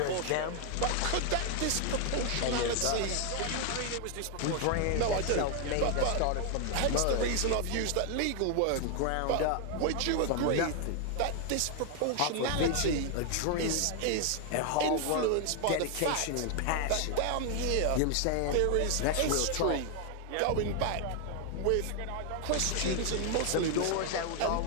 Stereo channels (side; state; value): both; different; correlation 0.00